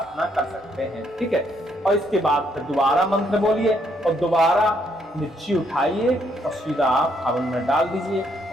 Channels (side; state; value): both; normal; correlation 0.72